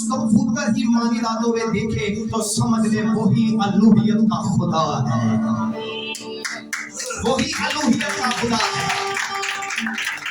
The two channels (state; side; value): identical; both; correlation 1.00